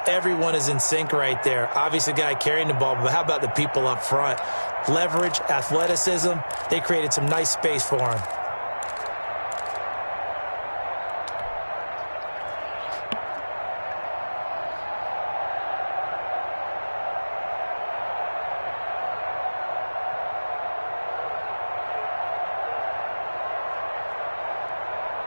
everyone is in sync right there. Obviously, the guy carrying the ball, but how about the people up front? Leverage, athleticism, they created some nice space for him.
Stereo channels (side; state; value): both; inverted; correlation -1.00